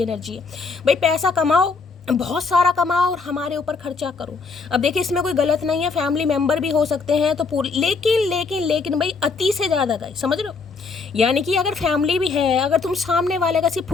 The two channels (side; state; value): right; quieter; 4.6 dB